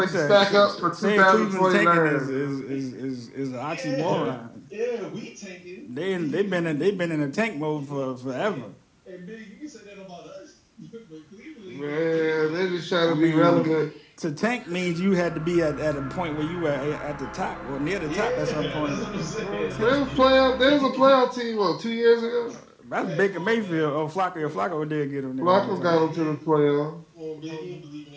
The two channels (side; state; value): both; identical; correlation 1.00